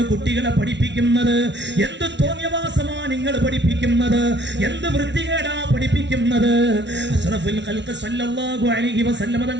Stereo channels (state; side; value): late; left; 0.51 ms